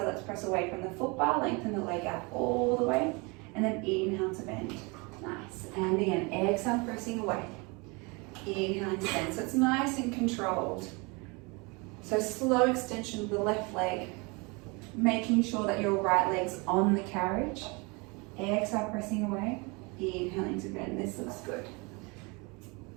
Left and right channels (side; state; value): left; quieter; 28.6 dB